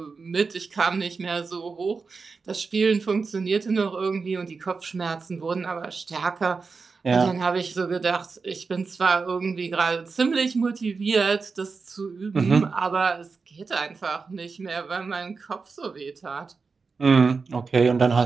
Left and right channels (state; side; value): quieter; left; 4.7 dB